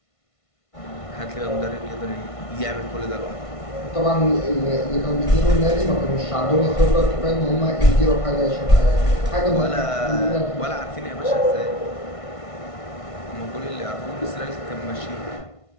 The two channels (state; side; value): late; right; 1.5 ms